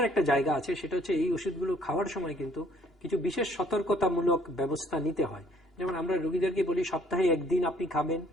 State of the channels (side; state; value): both; normal; correlation 0.61